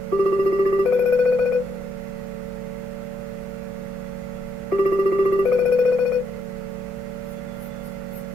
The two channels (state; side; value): normal; both; correlation 0.75